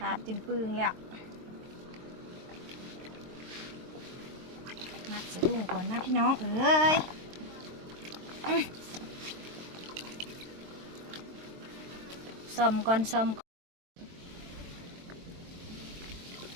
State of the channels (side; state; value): left; late; 23 ms